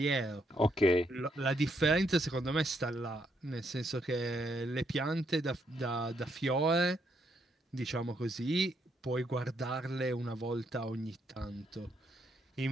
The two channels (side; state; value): both; normal; correlation 0.75